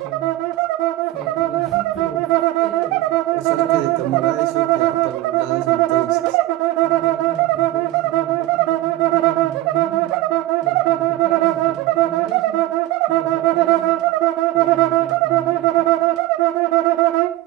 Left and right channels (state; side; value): quieter; left; 16.1 dB